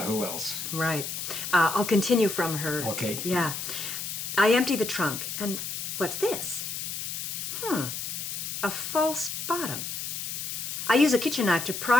who else? Right. I'll continue from her. Okay. Yeah. I empty the trunk, and what's this? A false bottom. I use a kitchen knife to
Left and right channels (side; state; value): left; noise; hiss, 5 dB below the sound